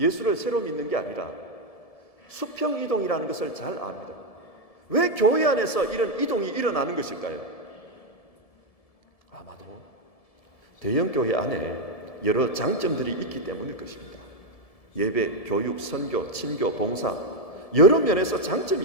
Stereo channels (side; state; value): right; late; 1.7 ms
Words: 새로 믿는 게 아니라 수평이동이라는 것을 잘 압니다. 왜 교회 안에서 이런 이동이 일어나는 것일까요? 아마도 대형 교회 안에 여러 장점들이 있기 때문일 것입니다. 예배, 교육, 선교, 친교, 봉사 여러 면에서 장점이